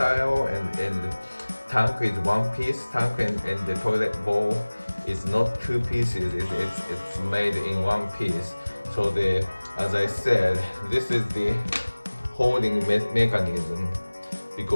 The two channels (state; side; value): inverted; both; correlation -1.00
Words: and the tank is one piece tank, and the toilet bowl is not two pieces. It's made in one piece. So as I said, this is the holding mechanism,